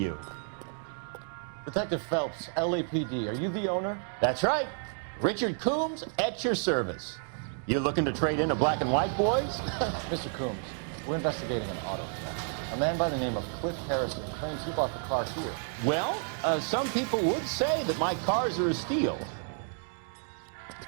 Detective Phelps, LAPD, are you the owner? That's right. Richard Coombs at your service. You looking to trade in a black and white, boys? Mr. Coombs, we're investigating an auto theft. A man by the name of Cliff Harrison claims he bought the car here. Well, some people would say that my cars are a steal.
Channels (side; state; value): left; silent; 57 dB below the other